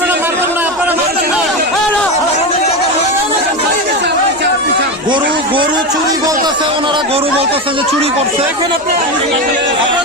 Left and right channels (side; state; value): both; normal; correlation 0.17